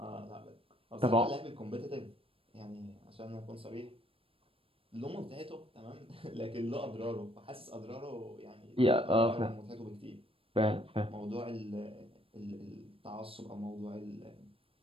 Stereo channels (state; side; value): late; left; 0.27 ms